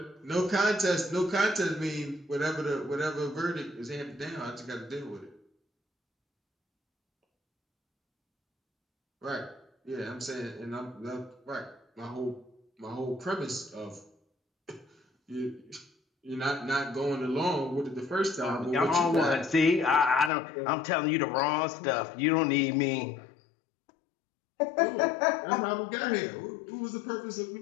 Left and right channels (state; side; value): drops out; right; at 20.3 s